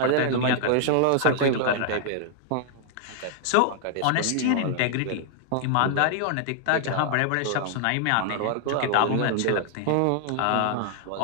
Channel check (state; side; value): different; both; correlation -0.01